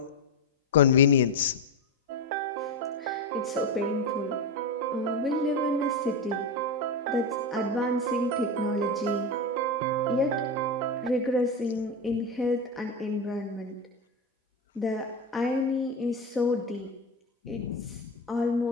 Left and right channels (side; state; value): both; normal; correlation 0.15